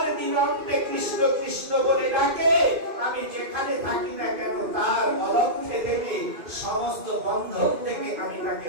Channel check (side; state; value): left; late; 2.6 ms